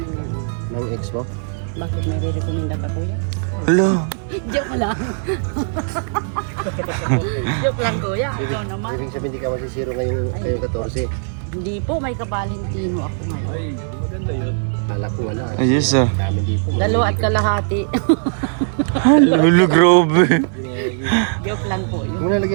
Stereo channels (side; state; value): left; silent; 57 dB below the other